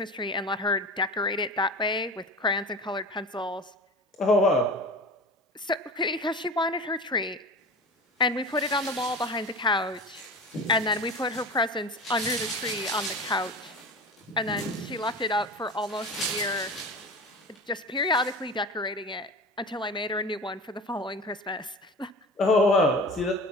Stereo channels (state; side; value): normal; both; correlation 0.33